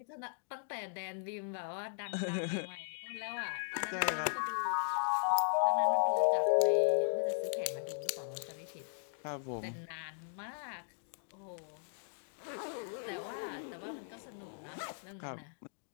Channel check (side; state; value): right; silent; digital silence